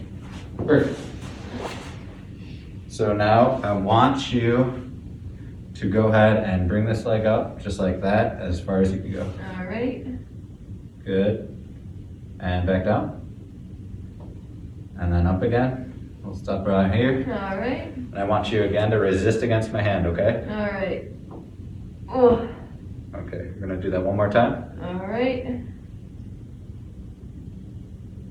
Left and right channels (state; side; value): identical; both; correlation 1.00